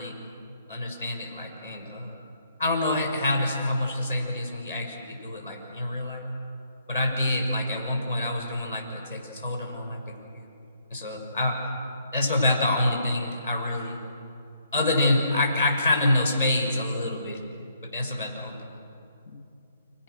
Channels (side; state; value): both; inverted; correlation -0.71